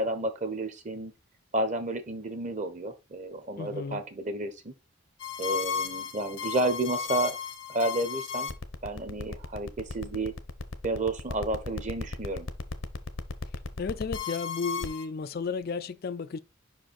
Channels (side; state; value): both; normal; correlation 0.06